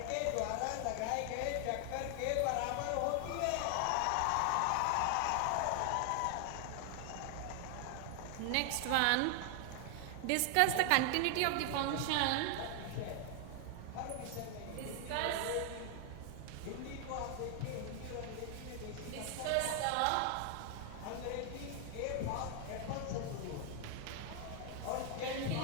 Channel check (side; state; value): both; different; correlation 0.00